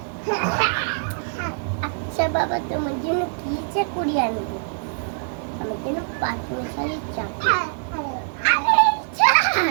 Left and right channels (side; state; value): left; silent; digital silence